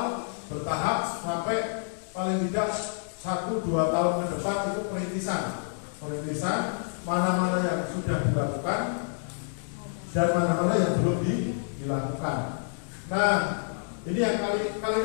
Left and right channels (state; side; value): silent; right; digital silence